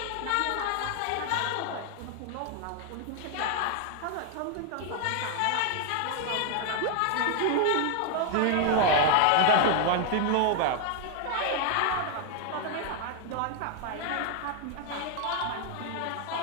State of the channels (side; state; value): both; different; correlation 0.00